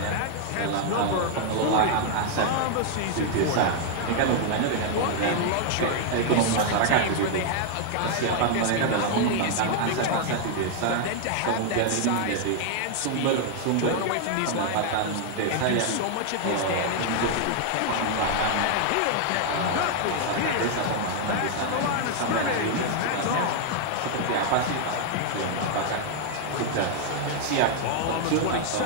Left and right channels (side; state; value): both; different; correlation 0.00